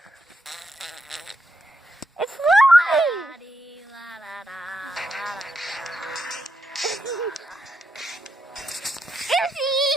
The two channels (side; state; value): both; normal; correlation 0.82